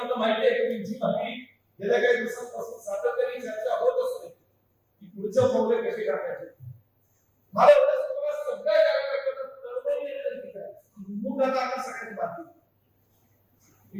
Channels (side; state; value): both; identical; correlation 1.00